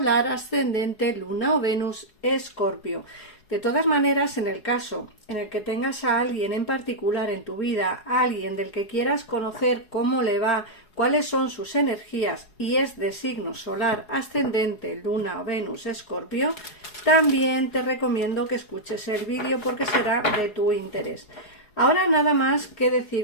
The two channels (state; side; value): late; right; 4.8 ms